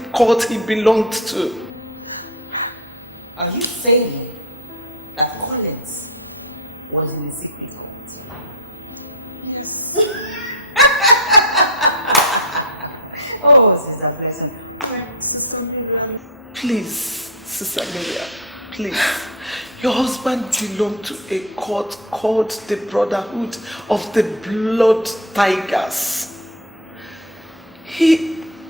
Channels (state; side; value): normal; both; correlation 0.16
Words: cult he belonged to. Are you saying that Collins was in the secret cult? Yes. Oh, Sister Pleasant. Please, Sister Miriam, Please. Your husband belonged to a cult called the Brotherhood of the Blood Tigers.